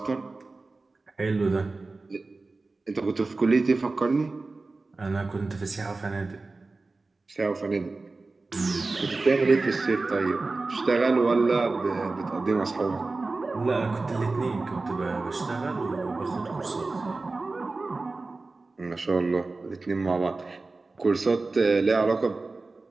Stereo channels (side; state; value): left; quieter; 3.6 dB